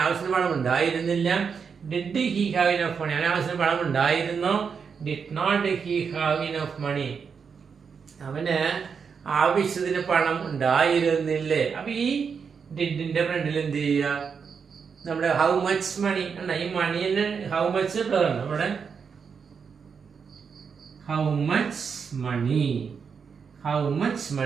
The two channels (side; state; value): left; quieter; 6.2 dB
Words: ആവശ്യത്തിന് പണം ഉണ്ടായിരുന്നില്ല. Did he have enough money, അവന് ആവശ്യത്തിന് പണം ഉണ്ടായിരുന്നു. Did not he have enough money, അവന് ആവശ്യത്തിന് പണം ഉണ്ടായിരുന്നില്ലേ? അപ്പൊ ഈ ഡിഡിന്റെ ഫ്രണ്ടിൽ എന്ത് ചെയ്യുക? നമ്മുടെ ഹൗ മച്ച് മണി അല്ല, ഈ മണിന് ഹൗ മച്ച് നമ്മുടെ how much money, how much